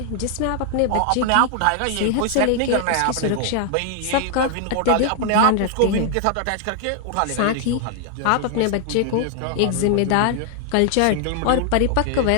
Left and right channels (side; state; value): both; different; correlation 0.00